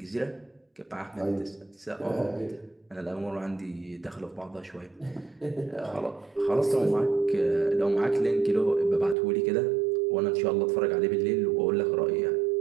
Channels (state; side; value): drops out; left; at 9.2 s